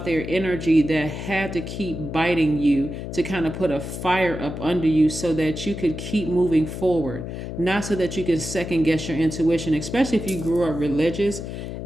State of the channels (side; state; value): left; noise; hum, 7 dB below the sound